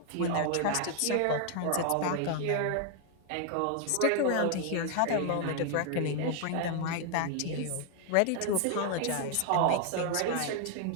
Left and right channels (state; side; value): different; both; correlation 0.00